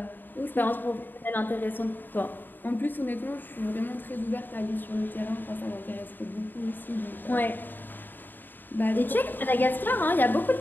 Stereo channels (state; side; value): late; right; 0.092 ms